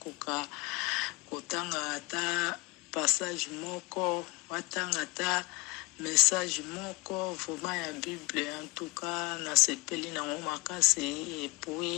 kotanga ata passage moko watanga ata message moko vraiment ya Bible en tout cas na sepeli na makasi et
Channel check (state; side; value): quieter; right; 25.4 dB